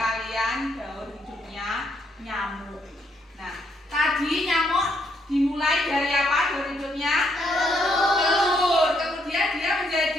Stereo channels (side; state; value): both; normal; correlation 0.73